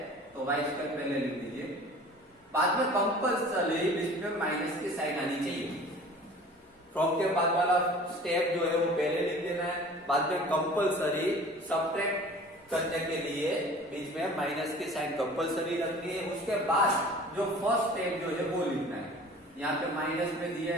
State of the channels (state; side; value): normal; both; correlation 0.45